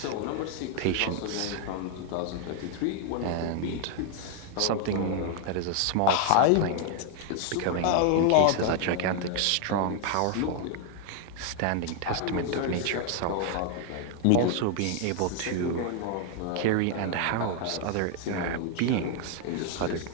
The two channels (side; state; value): both; different; correlation 0.00